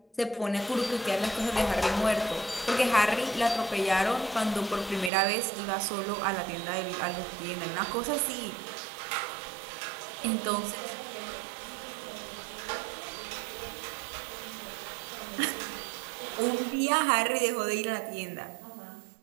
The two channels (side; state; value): left; drops out; at 5.1 s